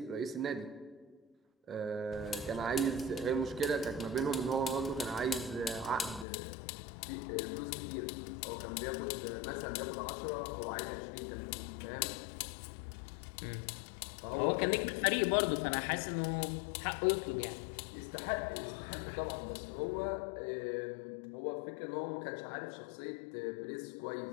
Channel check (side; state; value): right; drops out; at 6.2 s